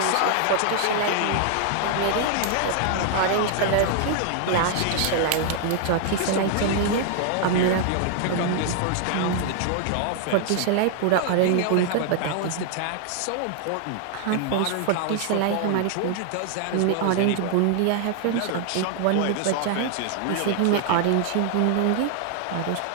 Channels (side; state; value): both; different; correlation 0.00